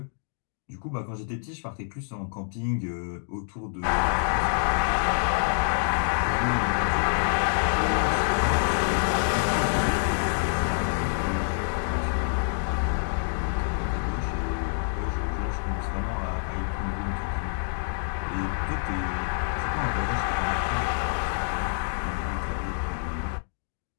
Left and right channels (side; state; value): right; silent; digital silence